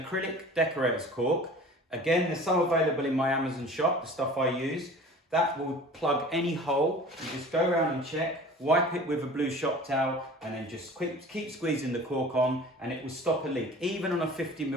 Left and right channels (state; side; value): normal; both; correlation 0.43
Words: decorator's cork. Again, there's some available in my Amazon shop, the stuff I use. That will plug any hole. You just go around and check, wipe it with a blue shop towel, and then just keep squeezing the cork on, and it will stop a leak. Even on a 50